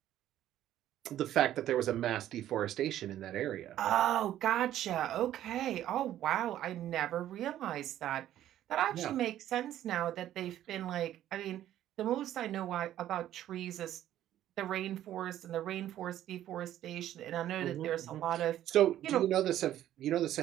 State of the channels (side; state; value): left; quieter; 12.3 dB